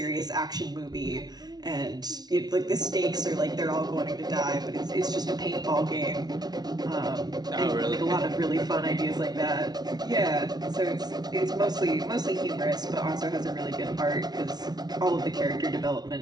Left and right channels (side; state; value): left; late; 0.19 ms